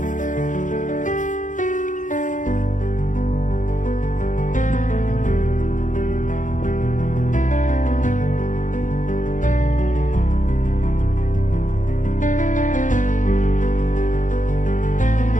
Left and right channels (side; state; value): right; late; 0.37 ms